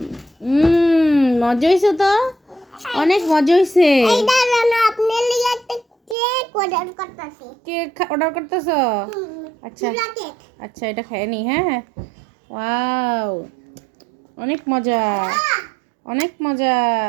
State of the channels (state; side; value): drops out; left; at 6.2 s